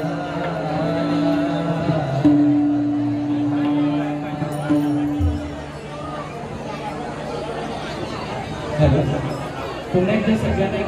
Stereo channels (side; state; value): both; identical; correlation 1.00